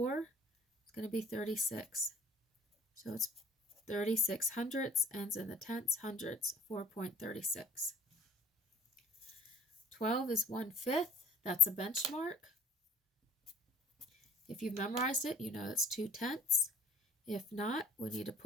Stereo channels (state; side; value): normal; both; correlation 0.52